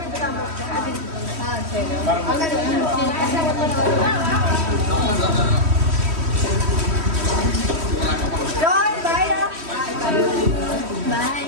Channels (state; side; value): late; left; 3.1 ms